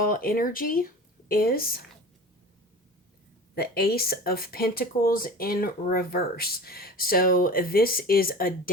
energy is the Ace of Pentacles in reverse. So this is a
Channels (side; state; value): both; normal; correlation 0.36